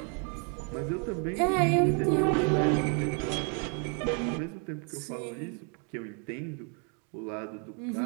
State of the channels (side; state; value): left; quieter; 38.9 dB